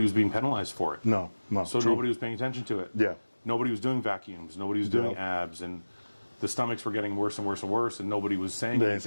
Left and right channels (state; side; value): inverted; both; correlation -1.00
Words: was being penalized for it. No. So nobody was paying attention to it. Yeah. Nobody was doing vacuums. Nobody was doing abs, and the stomachs were getting worse and worse and worse, and nobody was saying